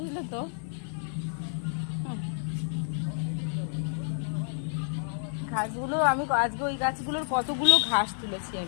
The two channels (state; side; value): silent; right; digital silence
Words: তো। ঘাসগুলো আমি আজকে ওই গাছগুলোর কতগুলো ঘাস তুলেছি